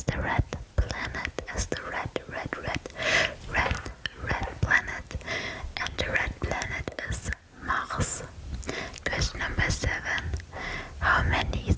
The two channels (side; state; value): both; identical; correlation 1.00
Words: the red planet? As the red planet. And the red planet is Mars. Question number 7. How many